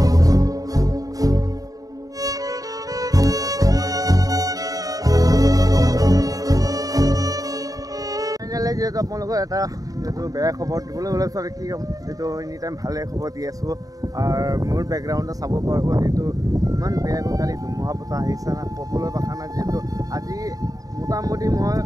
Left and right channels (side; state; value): left; late; 0.17 ms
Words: আপোনালোকৰ এটা যেহেতু বেয়া খবৰ দিবলৈ ওলাইছোঁ আৰু কি ক'ম, যিহেতু এনি টাইম ভালে খবৰ দি আছোঁ। আৰু মোৰ বেকগ্ৰাউণ্ডত চাব পাৰিব যিহেতু ইমান বেয়াকৈ কালি ধুমুহা বতাহ আহিছে না, ক'বলৈ ভাষা নাই। যিহেতু আজি মোটামুটি মই